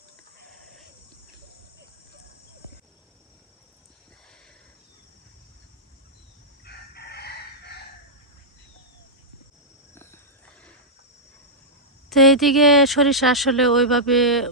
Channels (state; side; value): normal; both; correlation -0.09